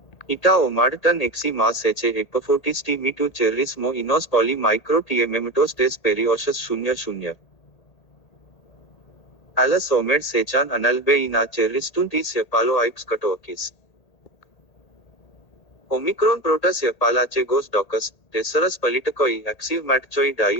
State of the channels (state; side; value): late; right; 1.8 ms